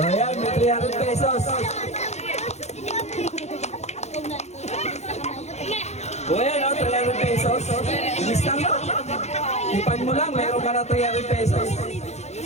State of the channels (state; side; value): late; right; 0.32 ms